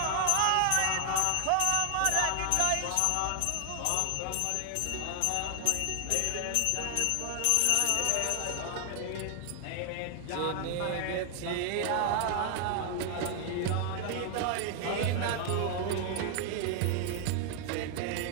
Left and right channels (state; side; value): different; both; correlation 0.00